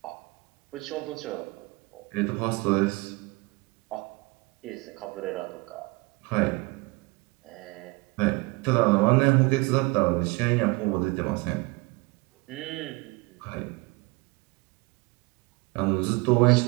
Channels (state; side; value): quieter; left; 25.0 dB